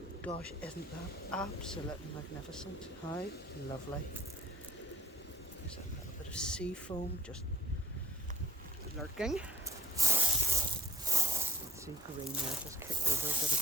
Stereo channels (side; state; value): both; normal; correlation 0.60